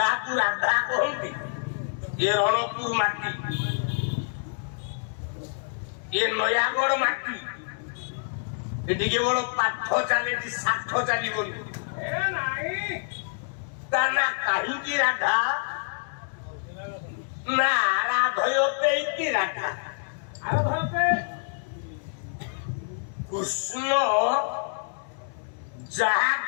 রাধা কহନ୍ତି এ রণপুর মাটি এ নয়াগড় মাটি এদিকে বড় পাঠ চালিছি ষাঠ চালিবনি ए नहीं তা না কাহিঁকি রাধা না রাধয়তে কি রাধা अरे धरते কৃষ্ণ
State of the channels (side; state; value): right; silent; digital silence